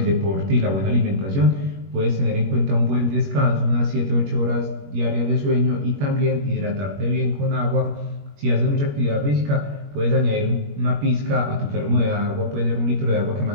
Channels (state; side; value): late; left; 21 ms